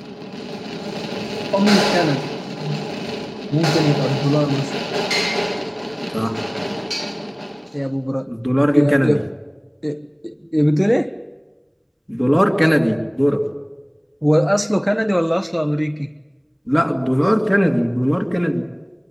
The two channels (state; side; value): identical; both; correlation 1.00